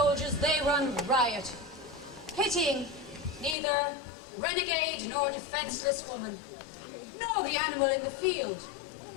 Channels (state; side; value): drops out; right; at 3.6 s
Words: they run riot, pitying neither renegade nor defenseless woman, nor the animal in the field.